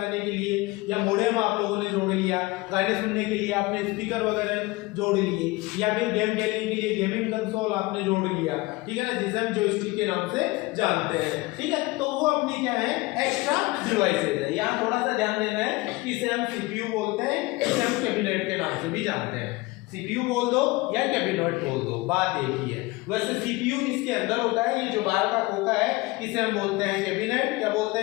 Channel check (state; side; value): quieter; right; 22.1 dB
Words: के लिए, या मॉडेम आप लोगों ने जोड़ लिया, गाने सुनने के लिए आपने स्पीकर वगैरह जोड़ लिए, या फिर गेम खेलने के लिए गेमिंग कंसोल आपने जोड़ लिया, ठीक है ना, जिसे हम जॉयस्टिक के नाम से जानते हैं, ठीक है। तो वो अपनी क्या है? एक्स्ट्रा डिवाइसेज है। यहाँ थोड़ा सा ध्यान देना है, इसे हम सीपीयू बोलते हैं, इसे हम कैबिनेट के नाम से भी जानते हैं। सीपीयू बोल दो या कैबिनेट बोल दो, बात एक ही है। वैसे सीपीयू इसके अंदर होता है, ये जो बाहर का खोखा है इसे हम बोलते हैं कैबिनेट। क्या बोलते